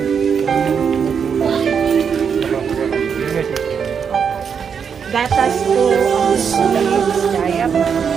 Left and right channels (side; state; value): left; quieter; 6.8 dB